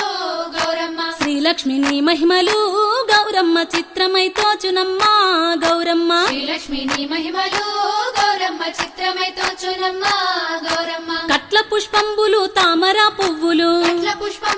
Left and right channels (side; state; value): both; identical; correlation 1.00